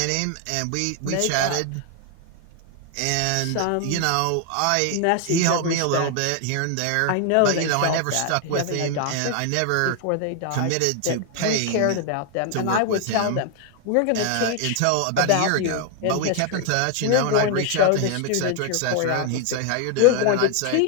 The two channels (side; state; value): both; different; correlation 0.00